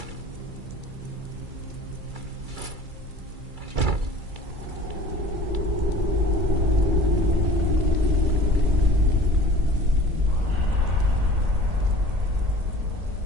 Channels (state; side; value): late; left; 2.3 ms